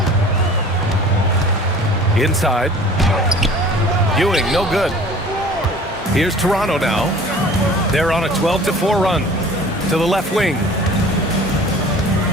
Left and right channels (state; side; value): normal; both; correlation 0.45